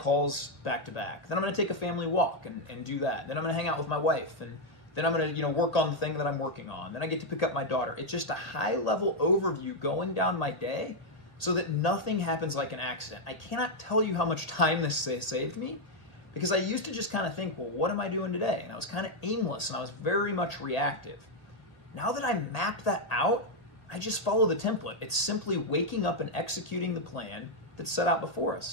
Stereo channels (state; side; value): late; right; 1.8 ms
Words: back to back. Then I'm going to take a family walk and do that. Then I'm going to hang out with my wife. And then I'm going to work on the thing that I'm working on. Then I get to pick up my daughter. It's just a high-level overview going down my day so that nothing happens like an accident. I cannot tell you how much time this saved me because I used to just kind of think, well, what am I doing today? And I was kind of aimless and I was very much reactive. Now that I map that out, I just follow the template. It's simply waking up and executing the plan that's set out before